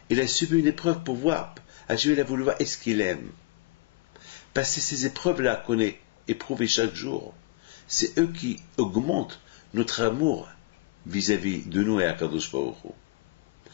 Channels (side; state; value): right; quieter; 21.9 dB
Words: il a subi une épreuve pour voir, Hachem, il a voulu voir est-ce qu'il aime. Parce que ces épreuves-là qu'on est éprouvées chaque jour, c'est eux qui augmentent notre amour vis-à-vis de nous et à Kadosh Baruch Hu.